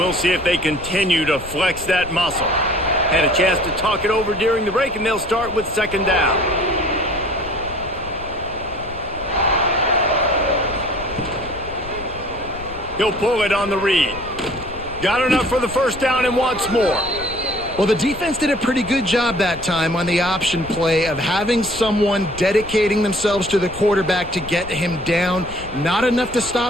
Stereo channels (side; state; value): left; noise; rumble, 15 dB below the sound